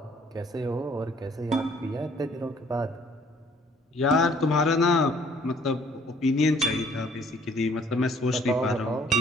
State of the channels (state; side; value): normal; both; correlation 0.59